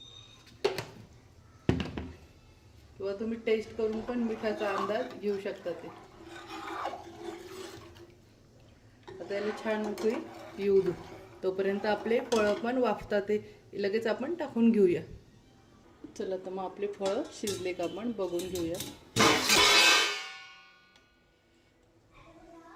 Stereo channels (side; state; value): both; identical; correlation 1.00